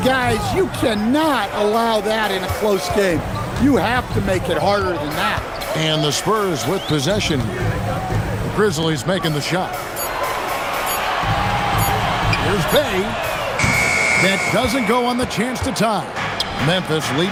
guys, you cannot allow that in a close game. You have to make it harder than that. And the Spurs with possession. The Grizzlies making the shot. Here's Bay. That doesn't go on the chance to tie. Memphis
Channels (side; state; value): both; identical; correlation 1.00